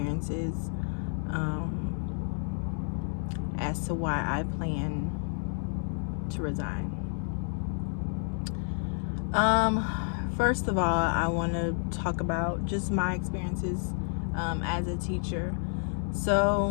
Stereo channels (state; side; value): silent; right; 58 dB below the other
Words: as to why I plan to resign. First of all, I want to talk about just my experiences as a teacher.